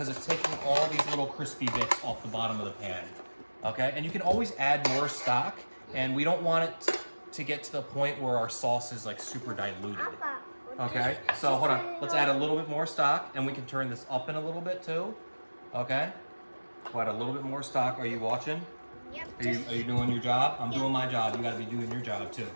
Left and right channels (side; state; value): both; inverted; correlation -1.00